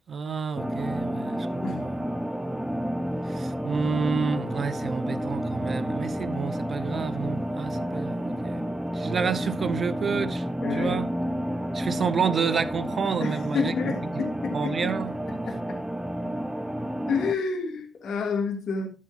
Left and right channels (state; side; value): normal; both; correlation 0.84